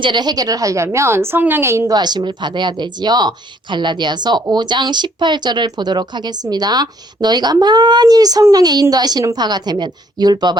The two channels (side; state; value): both; normal; correlation 0.65